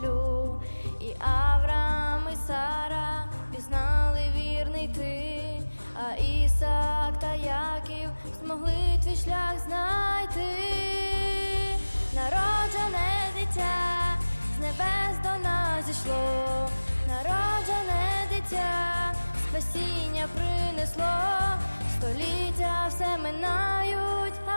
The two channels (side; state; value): both; inverted; correlation -1.00